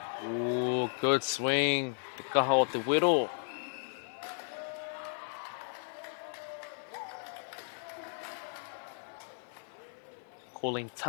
Ooh, good swing. Te kaha o te wero. Calling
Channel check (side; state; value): right; silent; digital silence